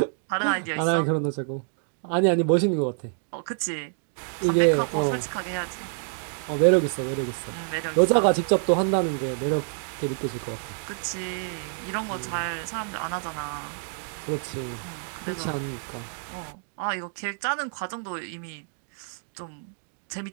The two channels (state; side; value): silent; left; digital silence